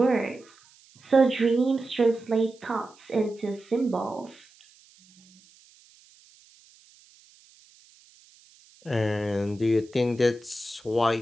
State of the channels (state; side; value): noise; right; hiss, 28 dB below the sound